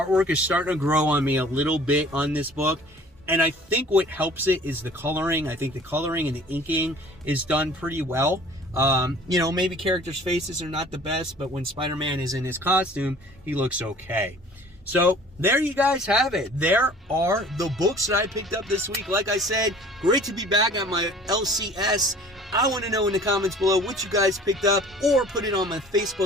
is starting to grow on me a little bit on this book. And I think what helps it is the coloring. I think the coloring and the inking is done pretty well. Maybe characters' faces are not the best, but when Spider-Man is in his costume, he looks okay. So there you guys have it. There are the books that I picked up this week. Like I said, great to be back at my LCS. I want to know in the comments below what you guys picked up, or put it on my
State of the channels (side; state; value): both; normal; correlation 0.49